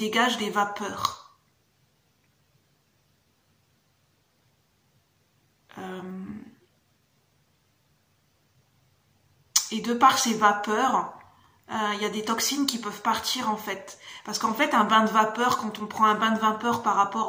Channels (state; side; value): identical; both; correlation 1.00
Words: des vapeurs. Et de par ces vapeurs, il y a des toxines qui peuvent partir en fait. Parce qu'en fait, un bain de vapeur, quand on prend un bain de vapeur par